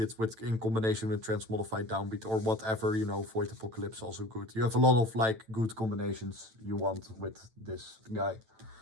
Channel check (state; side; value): late; left; 9.0 ms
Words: it in combination with Transmodified Downbeat or whatever, Void Apocalypse also good. You have a lot of like good combinations you want with this guy.